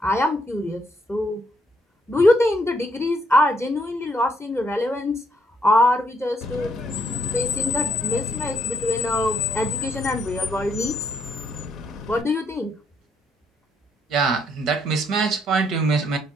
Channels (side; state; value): both; normal; correlation 0.72